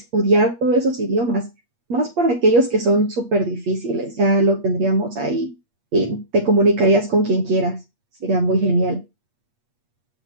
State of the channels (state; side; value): late; left; 8.5 ms